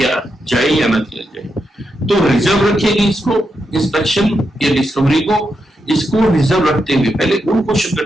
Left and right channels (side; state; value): both; normal; correlation 0.84